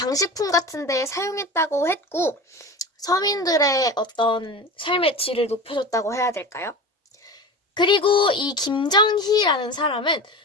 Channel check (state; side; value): normal; both; correlation 0.31